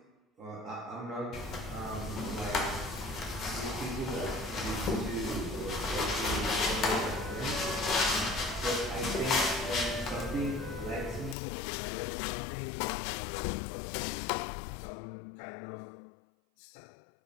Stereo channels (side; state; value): right; drops out; at 11.4 s